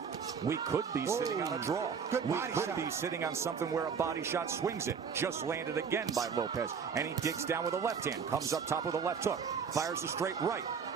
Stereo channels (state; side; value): quieter; left; 6.4 dB